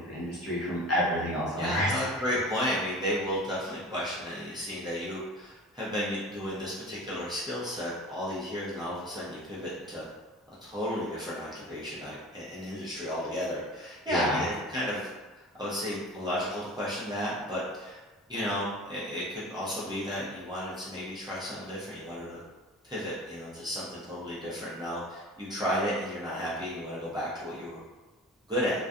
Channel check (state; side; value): normal; both; correlation 0.38